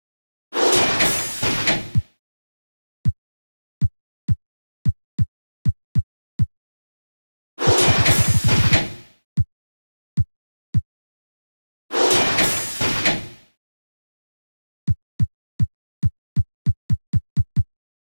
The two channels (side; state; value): both; inverted; correlation -1.00